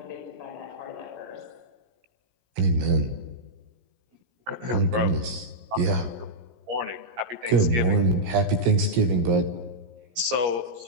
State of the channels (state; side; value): late; left; 17 ms